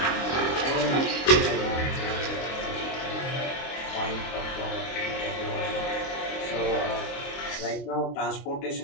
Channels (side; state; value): right; late; 23 ms